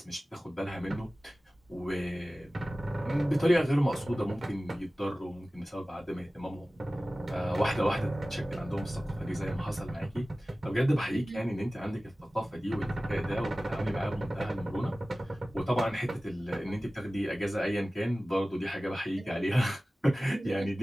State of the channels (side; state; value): both; normal; correlation 0.97